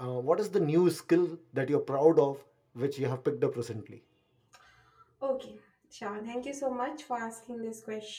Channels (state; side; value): identical; both; correlation 1.00